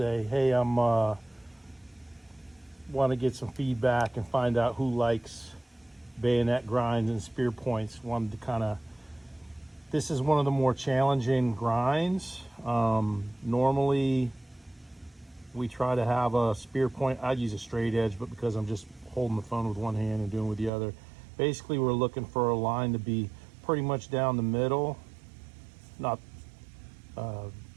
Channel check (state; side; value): drops out; left; at 20.7 s